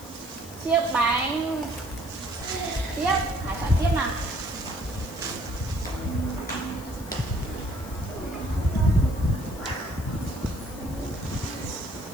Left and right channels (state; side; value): noise; left; hiss, 17 dB below the sound